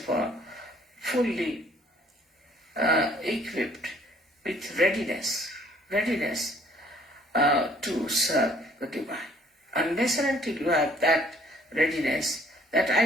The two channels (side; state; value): both; normal; correlation 0.60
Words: all, fully equipped with readiness to serve the divine. Unless and until you have that readiness, that